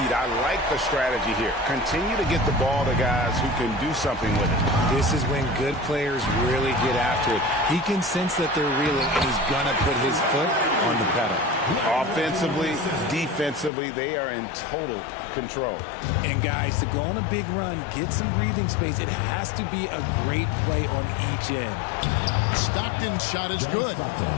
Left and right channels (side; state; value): right; drops out; at 13.7 s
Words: I like the strategy here. Continue to get the ball to guys who can do something with it. This is when good players really get after it. He can sense that they're reeling, and he's going to put his foot on the pedal. Offensively, defensively, they are in total control. And guys, to go on a big run, get some breathing space, it has to be a great play on each end. Stockton's shot is good.